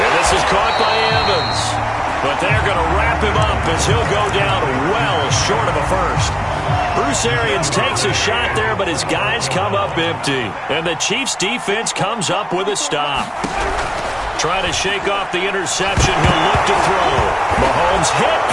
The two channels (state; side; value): identical; both; correlation 1.00